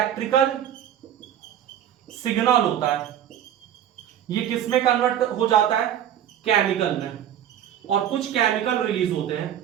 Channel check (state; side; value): quieter; left; 10.4 dB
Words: सिग्नल होता है, ये किस में कन्वर्ट हो जाता है? केमिकल में। और कुछ केमिकल रिलीज होते